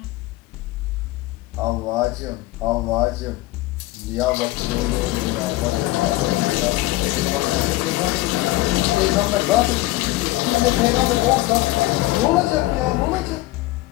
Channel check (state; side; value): quieter; right; 18.4 dB